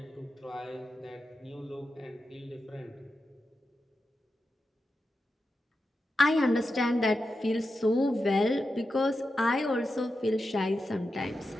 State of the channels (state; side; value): normal; both; correlation 0.89